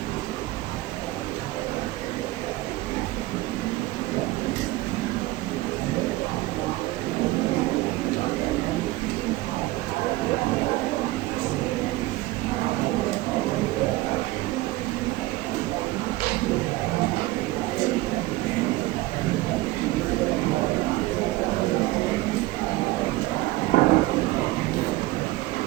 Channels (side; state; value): left; quieter; 18.6 dB